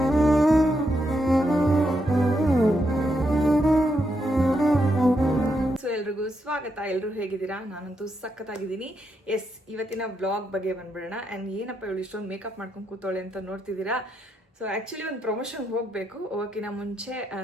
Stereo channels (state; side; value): normal; both; correlation 0.81